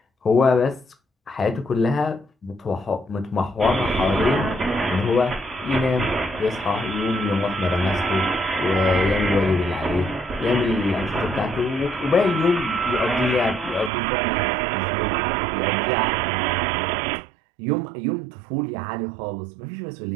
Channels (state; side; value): drops out; left; at 13.9 s